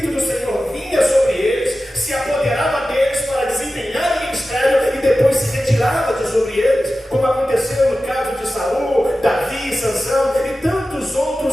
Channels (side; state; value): both; normal; correlation 0.94